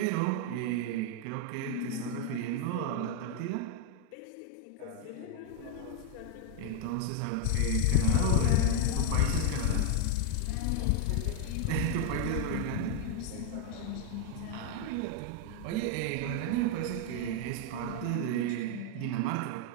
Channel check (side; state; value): both; different; correlation 0.00